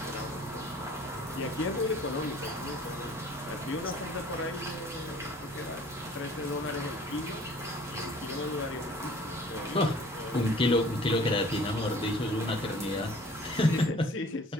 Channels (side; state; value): both; normal; correlation 0.51